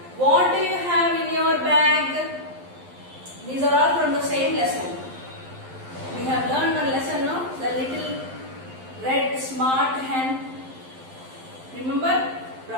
What do you have in your bag? These are all from the same lesson. We have learned one lesson, no? The little red smart hen. Remember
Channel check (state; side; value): late; left; 11 ms